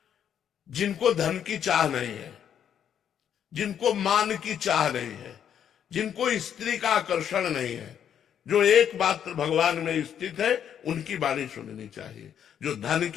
जिनको धन की चाह नहीं है, जिनको मान की चाह नहीं है, जिनको स्त्री का आकर्षण नहीं है, जो एकमात्र भगवान में स्थित है, उनकी वाणी सुननी चाहिए। जो धन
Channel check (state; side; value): quieter; right; 9.0 dB